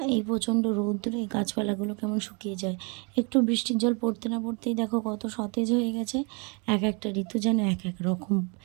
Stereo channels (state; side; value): quieter; left; 33.3 dB